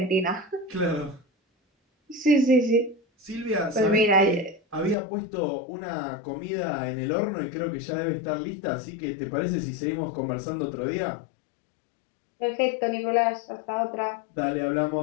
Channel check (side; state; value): right; drops out; at 5.0 s